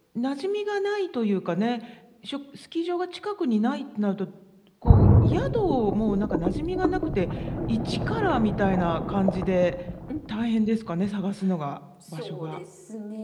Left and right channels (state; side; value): identical; both; correlation 1.00